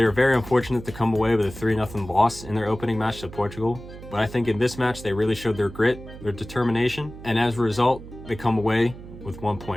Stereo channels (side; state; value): right; noise; hum, 15 dB below the sound